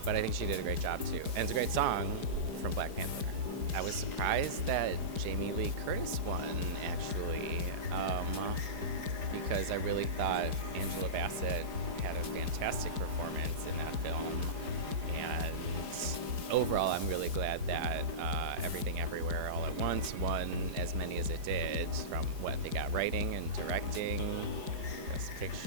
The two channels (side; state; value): left; late; 4.9 ms